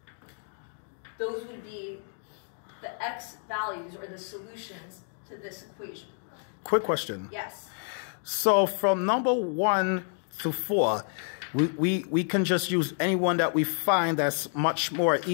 those would be the x values or the solutions to this equation. Quick question. Yes. So from number 1 to 4, we can just use any one that we find that's much more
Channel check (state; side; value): silent; right; 58 dB below the other